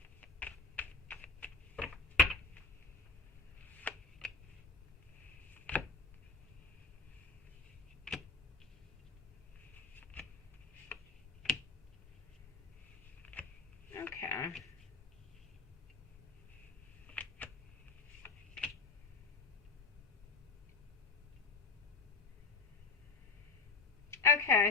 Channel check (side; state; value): right; quieter; 4.0 dB